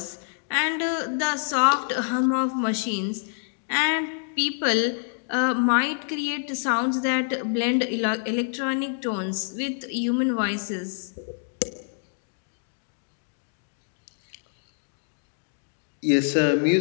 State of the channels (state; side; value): silent; right; digital silence